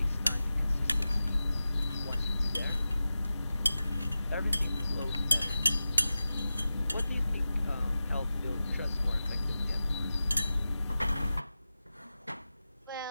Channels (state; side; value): inverted; both; correlation -0.94